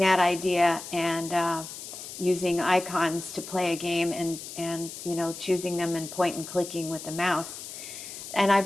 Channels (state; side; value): noise; left; hiss, 11 dB below the sound